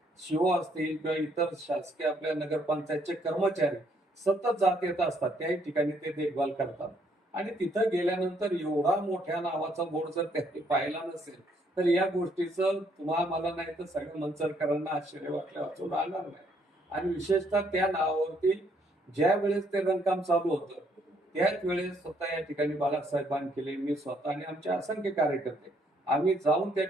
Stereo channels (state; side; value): normal; both; correlation 0.69